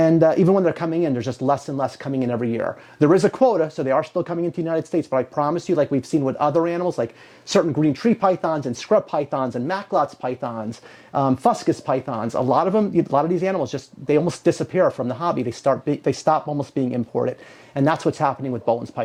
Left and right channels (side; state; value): both; identical; correlation 1.00